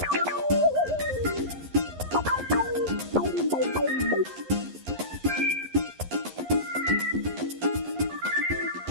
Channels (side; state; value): left; late; 11 ms